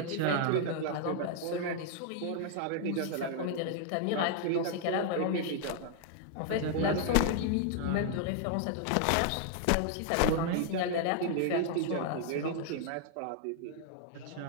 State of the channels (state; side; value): different; both; correlation 0.00